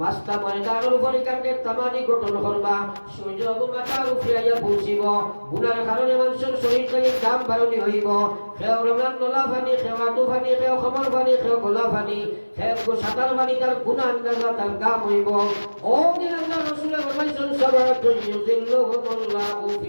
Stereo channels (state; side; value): inverted; both; correlation -1.00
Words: মাস্তা ময়দানের উপরে কাটে তামানি গঠন করবা, সূর্য মাথার উপরে আইয়া পৌঁছিব। গুনার কারণে মানুষের শরীর থেকে দাম বাড়নি হইব। খেও রমজান নলা ফানি, খেও আটু ফানি, খেও খমর ফানি, খেও গোলা ফানি, খেও সাঁতার ফানি, তার গুণা আন্দাজা তার কাম হইব। ও দিন আল্লাহ রসুলের ফরমাইছেন সাবাতুন ইউযিল্লুহুমুল্লাহু